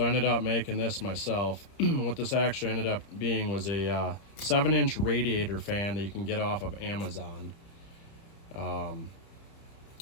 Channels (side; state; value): right; late; 30 ms